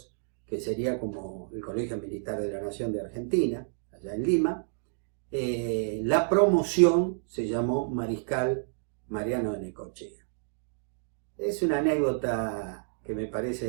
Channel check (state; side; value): silent; left; digital silence